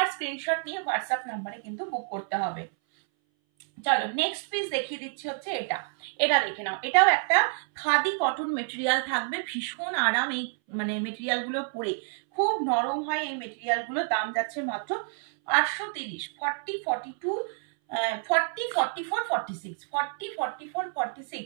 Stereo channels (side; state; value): left; silent; 59 dB below the other